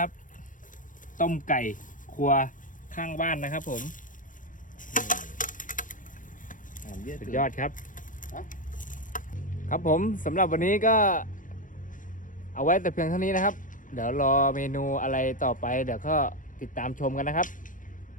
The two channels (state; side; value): late; right; 0.38 ms